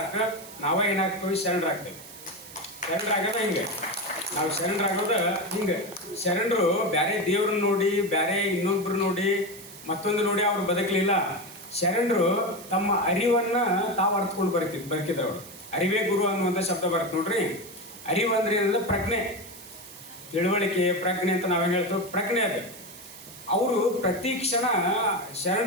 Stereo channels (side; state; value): right; noise; hiss, 17 dB below the sound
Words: ನಾವೇ ಏನಾಗ್ತೀವಿ, ಶರಣರಾಗ್ತೇವೆ. ಶರಣರಾಗೋದ ಹಿಂಗೆ, ನಾವು ಶರಣರಾಗೋದ ಹಿಂಗೆ. ಶರಣರು ಬೇರೆ ದೇವ್ರನ್ನ ನೋಡಿ, ಬೇರೆ ಇನ್ನೊಬ್ರು ನೋಡಿ, ಮತ್ತೊಂದು ನೋಡಿ ಅವ್ರು ಬದುಕಲಿಲ್ಲ. ಶರಣರು ತಮ್ಮ ಅರಿವನ್ನ ತಾವು ಅರ್ಥಕೊಂಡು ಬದುಕಿದವರು. ಅರಿವೇ ಗುರು ಅನ್ನುವಂಥ ಶಬ್ದ ಬರುತ್ತೆ ನೋಡ್ರಿ. ಅರಿವು ಅಂದ್ರೆ ಏನಂದ್ರೆ ಪ್ರಜ್ಞೆ, ತಿಳುವಳಿಕೆ, ಪ್ರಜ್ಞೆ ಅಂತ ನಾವೇನು ಹೇಳ್ತೇವೆ, ಪ್ರಜ್ಞೆ ಅದು. ಅವರು ಪ್ರತಿ ಕ್ಷಣ